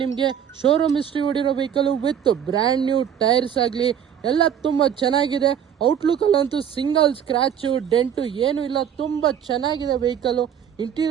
ನಿಮಗೆ. ಶೋರೂಮ್ ಹಿಸ್ಟ್ರಿ ಹೊಡಿರೋ vehicle with brand new tyres ಆಗಲಿ ಎಲ್ಲ ತುಂಬ ಚೆನ್ನಾಗಿದೆ. ಔಟ್ಲುಕ್ಕಲ್ಲಂತೂ ಸಿಂಗಲ್ ಸ್ಕ್ರ್ಯಾಚು ಡೆಂಟು ಏನೂ ಇಲ್ಲ, ತುಂಬ ಚೆನ್ನಾಗಿದೆ ವೆಹಿಕಲ್ಲು.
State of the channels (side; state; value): left; quieter; 8.9 dB